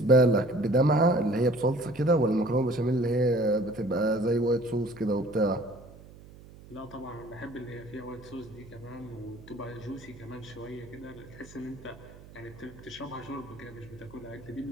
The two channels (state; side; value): noise; right; hum, 20 dB below the sound